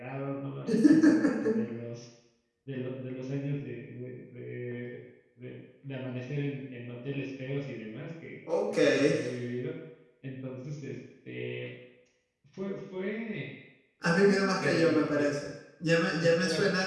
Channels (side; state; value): both; identical; correlation 1.00